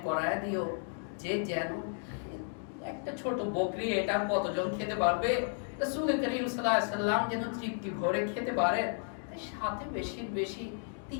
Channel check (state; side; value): silent; right; 56 dB below the other